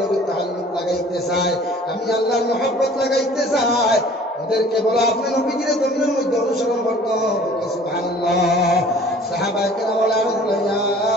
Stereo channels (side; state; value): both; normal; correlation 0.50